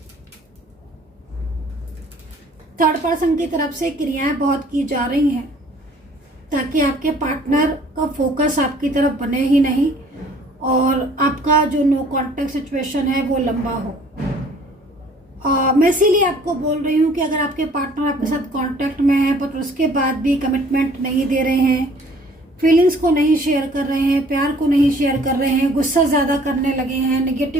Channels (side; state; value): both; normal; correlation 0.55